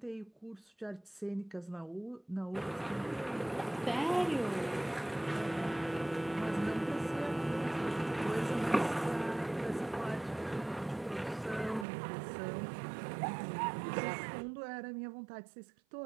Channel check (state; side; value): drops out; left; at 11.9 s